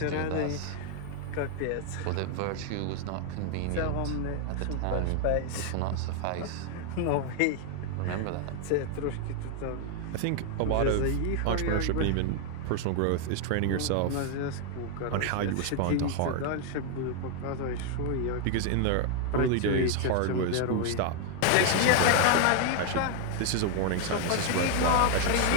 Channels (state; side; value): different; both; correlation 0.00